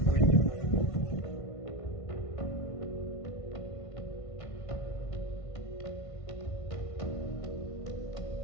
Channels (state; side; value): late; right; 1.5 ms